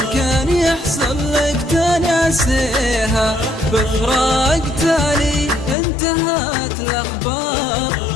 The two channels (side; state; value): right; drops out; at 5.8 s